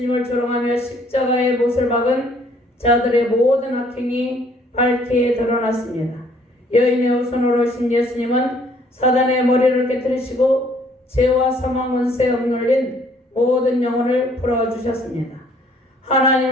조롱하며 십자가의 못을 박은 자들의 모든 악행이 밝게 드러났습니다. 여인의 손으로 오신 예수님은 사단의 머리를 깨뜨리시고 죄와 사망 원세에 억눌린 모든 영혼을 풀어주셨습니다.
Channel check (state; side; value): normal; both; correlation 0.62